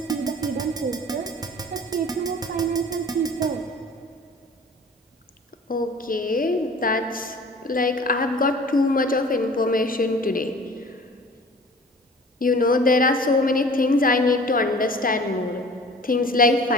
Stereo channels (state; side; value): normal; both; correlation 0.45